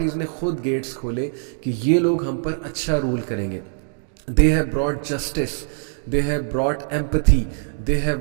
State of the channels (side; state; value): left; silent; digital silence